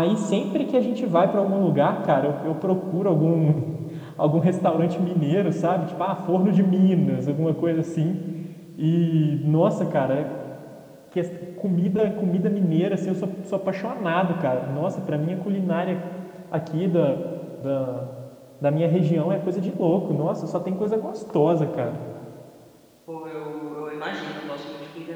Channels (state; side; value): identical; both; correlation 1.00